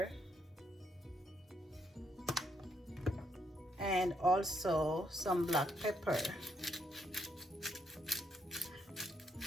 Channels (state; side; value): normal; both; correlation 0.75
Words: and also some black pepper.